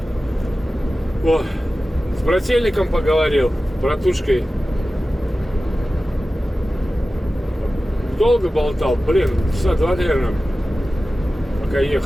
О, с брательником поговорил, братушкой. Долго болтал, блин, часа два, наверное, пока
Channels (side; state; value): both; normal; correlation 0.95